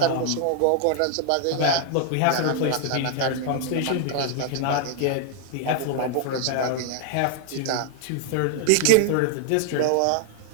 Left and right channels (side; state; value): both; different; correlation 0.00